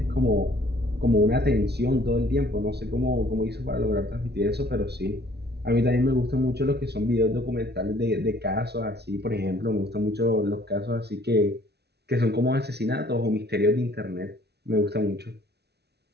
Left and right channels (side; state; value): left; late; 0.48 ms